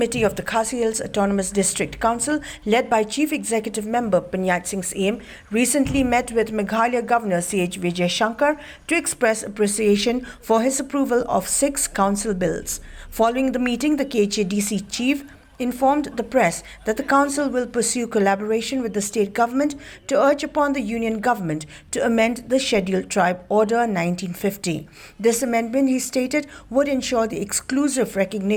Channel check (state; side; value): identical; both; correlation 1.00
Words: of the Khasi Hills Autonomous District Council, led by Chief Executive Member Pyniaid Sing Syiem, recently met with Meghalaya Governor C.H. Vijayshankar to express appreciation for his approval of 6 council bills. Following the meeting, the KHADC Chief informed the press that the council will pursue collaboration with the state government to urge upon the union government to amend the Scheduled Tribe Order 1950. This amendment, he stated, would ensure the exclusive